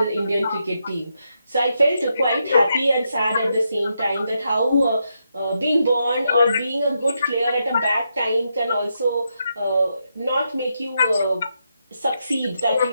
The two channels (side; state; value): both; inverted; correlation -0.82